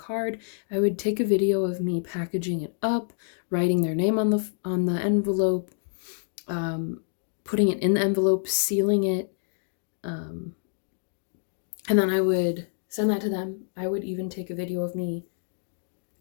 I would take a video of me packaging it up, writing their name on the envelope, putting it in the envelope, sealing it, and then I would send that to them. I would even take a video of me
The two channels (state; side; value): silent; right; digital silence